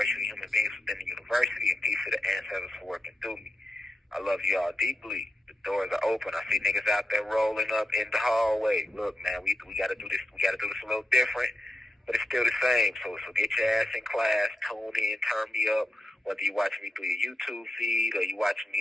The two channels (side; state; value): both; normal; correlation 0.89